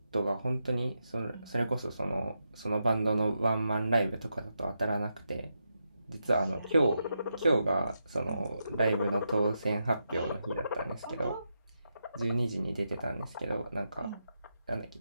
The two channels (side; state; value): both; inverted; correlation -0.85